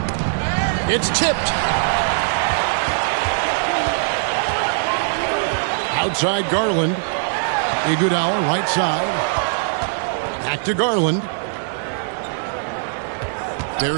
It's tipped. Outside Garland. Iguodala right side. Back to Garland.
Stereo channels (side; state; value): left; silent; 62 dB below the other